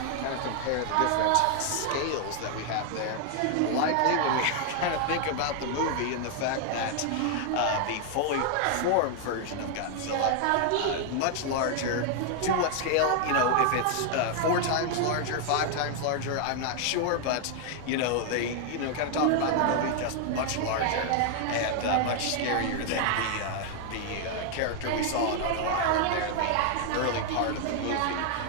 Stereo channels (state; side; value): different; both; correlation 0.00